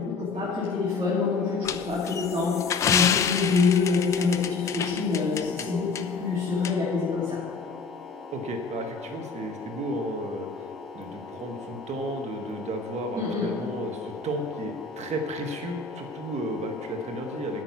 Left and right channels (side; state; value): right; quieter; 4.2 dB